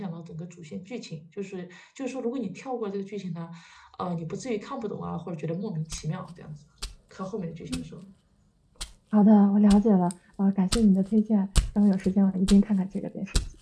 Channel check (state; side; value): identical; both; correlation 1.00